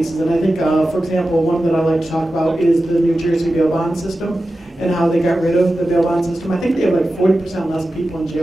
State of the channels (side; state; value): both; normal; correlation 0.93